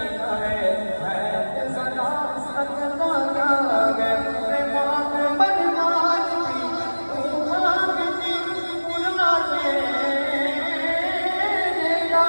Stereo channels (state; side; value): inverted; both; correlation -1.00